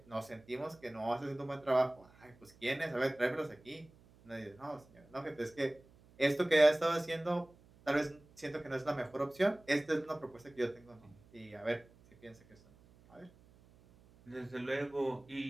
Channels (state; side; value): noise; right; hum, 26 dB below the sound